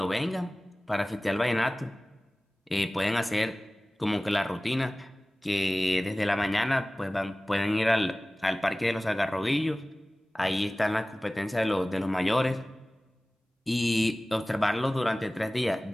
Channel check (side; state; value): both; normal; correlation 0.98